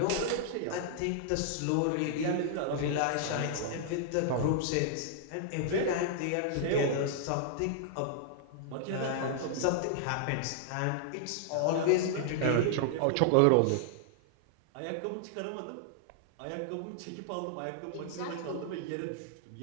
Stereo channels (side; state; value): both; different; correlation -0.01